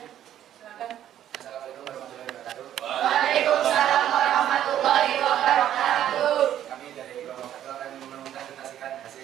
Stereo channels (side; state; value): left; quieter; 11.2 dB